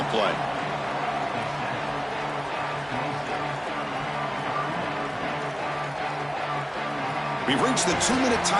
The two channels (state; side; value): identical; both; correlation 1.00